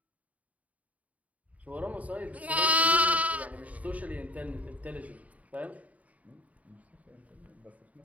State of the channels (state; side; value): late; left; 0.070 ms